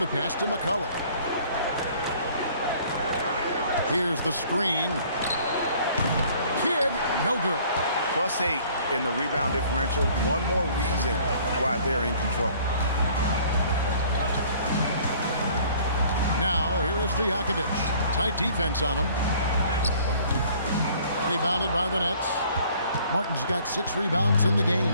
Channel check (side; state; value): both; inverted; correlation -0.55